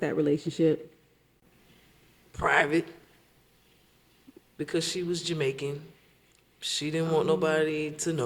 that relationship? Private, because she was Jamaican. She didn't want nobody to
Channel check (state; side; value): identical; both; correlation 1.00